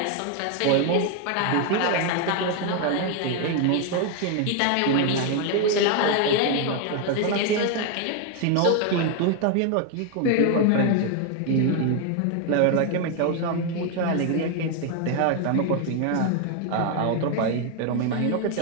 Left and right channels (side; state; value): both; different; correlation 0.01